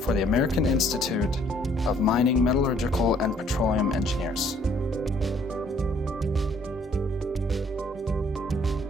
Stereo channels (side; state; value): both; normal; correlation 0.62